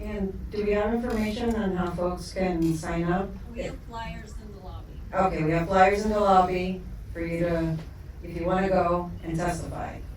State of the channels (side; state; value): both; identical; correlation 1.00